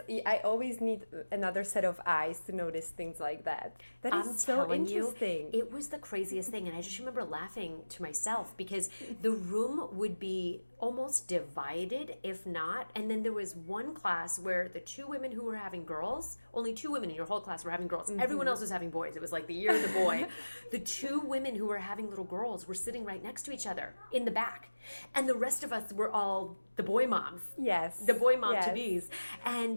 I always need another set of eyes to notice things like that. That is so interesting. It was the craziest thing. And I just remember laughing to myself because the room would be almost divided, if not. And then there was one class where the two women who were having girls, only two women in your whole class were having girls. Everyone else was having boys. It was like the year of the boy. The two women who were having little girls were sitting right next to each other in the back. And the rest of us were all the boy moms. Yes. The boy mom to be's.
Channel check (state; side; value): inverted; both; correlation -1.00